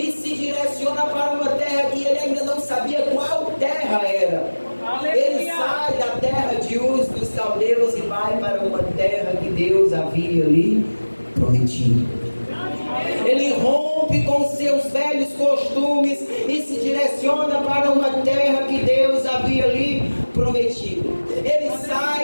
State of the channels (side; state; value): both; inverted; correlation -1.00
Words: se direciona para uma terra que ele ainda não sabia qual terra era. Ele sai da terra de Uz dos caldeus e vai para uma terra que Deus havia lhe prometido. Ele rompe com seus velhos costumes e se direciona para uma terra que Deus havia lhe prometido. Ele